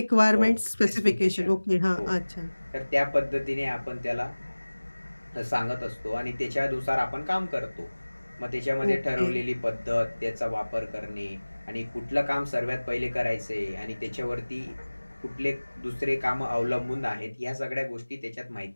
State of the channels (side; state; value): both; inverted; correlation -1.00